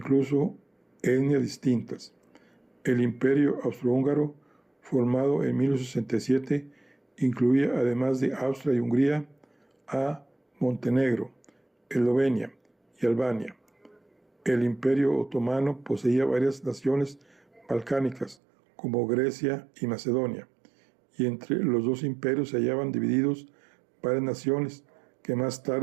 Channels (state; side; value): drops out; left; at 18.4 s